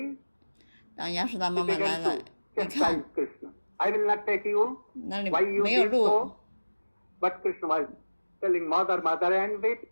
当亚叔达妈 he 妈来 began 了， to 一 chastise 看 Krishna. I will not take you. 那里 Why you 没有 did 路， so? But Krishna was telling mother, mother, and weep.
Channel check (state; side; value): inverted; both; correlation -1.00